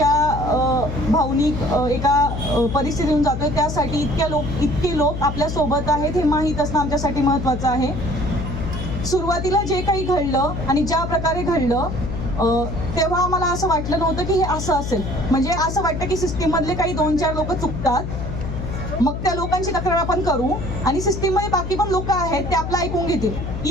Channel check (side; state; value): left; noise; hum, 5 dB below the sound